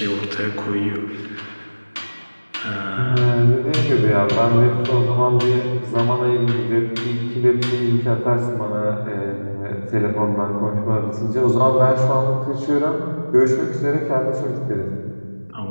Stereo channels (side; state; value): both; inverted; correlation -1.00